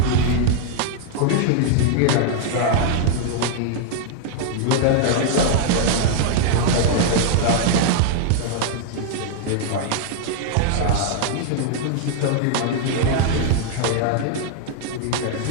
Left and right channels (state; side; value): different; both; correlation -0.01